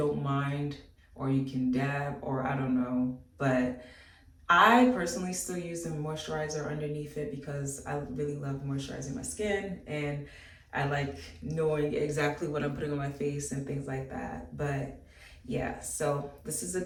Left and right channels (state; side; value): identical; both; correlation 1.00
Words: mind, or you can dab, or I don't know. But I personally still use a moisturizer underneath it because I really love moisturizing my skin, and I like knowing exactly what I'm putting on my face and things like that. But yeah, so this is a